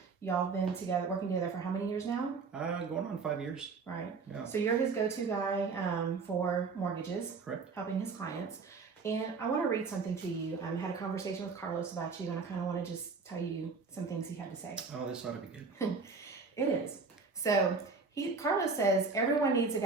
Y'all been together, working together for how many years now? Going on 5 years. Right. Yeah. So you're his go-to guy for mortgages. Correct. Helping his clients. And I want to read something to you. I had a conversation with Carlos about you, and I kind of want to just tell you some things he had to say. Oh, this ought to be good. It is. So Carlos says, everyone needs a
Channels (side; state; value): left; quieter; 4.6 dB